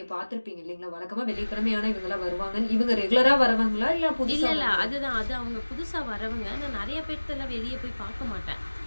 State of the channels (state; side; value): inverted; both; correlation -1.00